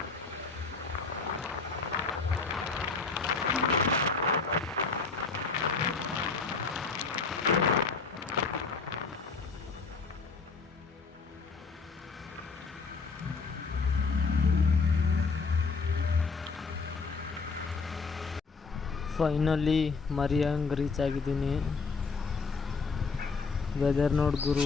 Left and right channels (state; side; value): quieter; right; 4.6 dB